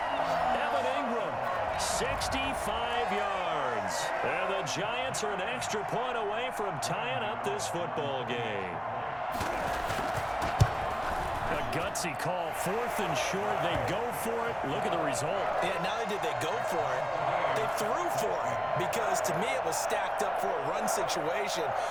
Evan Ingram, 65 yards. And the Giants are an extra point away from tying up this football game. A gutsy call, 4th and short. They go for it. Look at the result. Yeah, not only did they go for it, they threw for it, because to me it was stacked up for a run situation,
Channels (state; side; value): identical; both; correlation 1.00